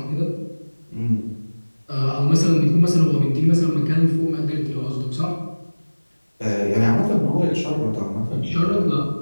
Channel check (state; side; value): inverted; both; correlation -1.00